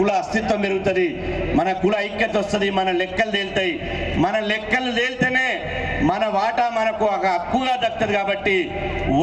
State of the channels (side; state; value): both; identical; correlation 1.00